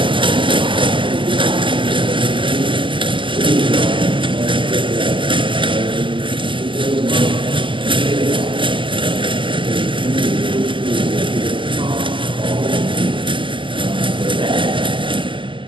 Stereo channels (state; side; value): late; left; 0.24 ms